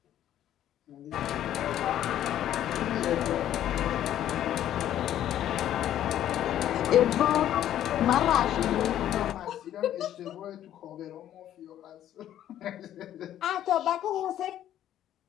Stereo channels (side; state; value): right; quieter; 11.6 dB